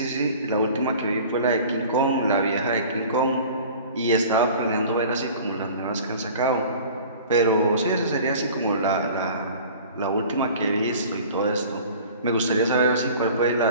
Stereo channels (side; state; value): both; inverted; correlation -0.44